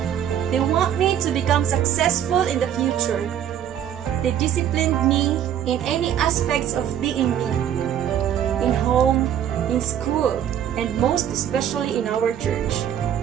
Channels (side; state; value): left; quieter; 10.0 dB